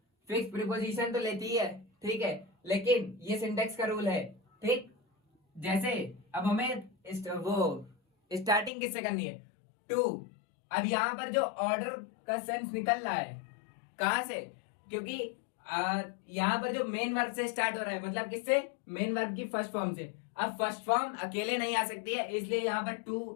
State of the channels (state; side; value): drops out; right; at 8.7 s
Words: फिक्स प्रीपोजिशन तो लेती है, ठीक है, लेकिन ये सिंटेक्स का रूल है, ठीक। जैसे अब हमें वो स्टार्टिंग किससे करनी है, टू। अब यहाँ पर जो ऑर्डर का सेंस निकल रहा है कहां से, क्योंकि यहाँ पर जो मेन वर्ब से स्टार्ट हो रहा है, मतलब किससे, मेन वर्ब की फर्स्ट फॉर्म से। अब फर्स्ट फॉर्म अकेले नहीं आ सकती है, इसलिए यहाँ पर